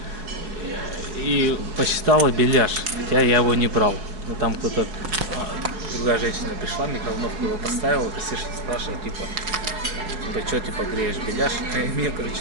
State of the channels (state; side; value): late; left; 4.8 ms